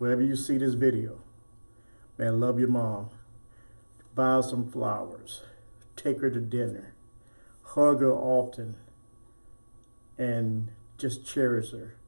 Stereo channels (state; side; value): inverted; both; correlation -1.00